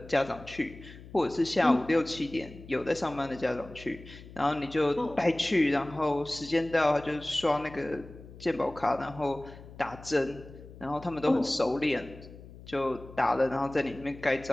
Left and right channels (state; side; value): noise; left; hum, 17 dB below the sound